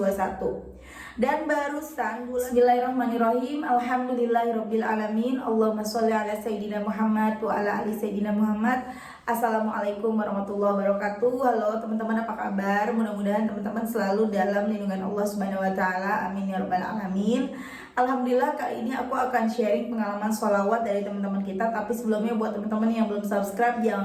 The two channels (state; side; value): identical; both; correlation 1.00